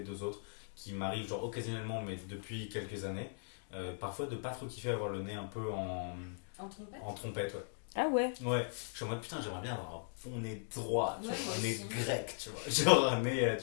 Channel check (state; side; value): silent; right; digital silence